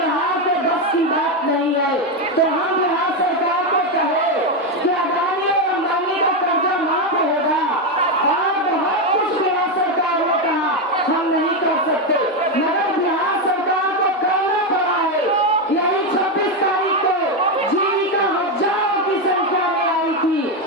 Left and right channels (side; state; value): both; normal; correlation 0.08